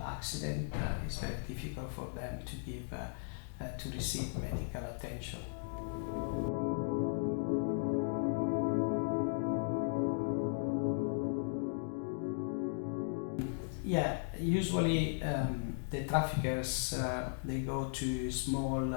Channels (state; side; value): silent; right; digital silence